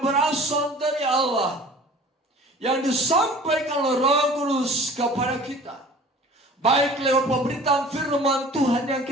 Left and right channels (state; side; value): normal; both; correlation 0.45